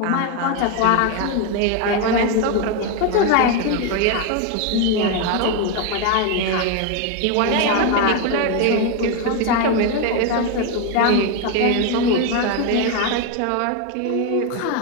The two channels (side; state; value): both; different; correlation 0.02